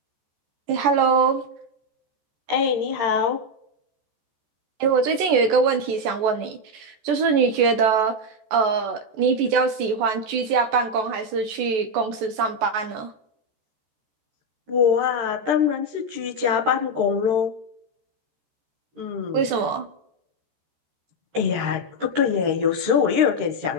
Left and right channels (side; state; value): left; late; 14 ms